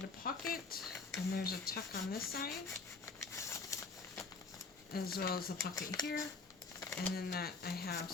a pocket, and there's a tuck on this side, as well as a pocket here, and then that I have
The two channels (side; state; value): right; quieter; 4.2 dB